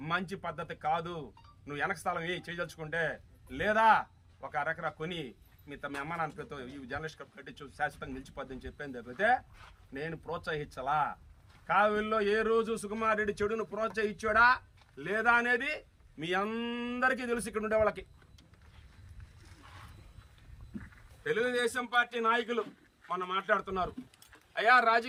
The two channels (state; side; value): identical; both; correlation 1.00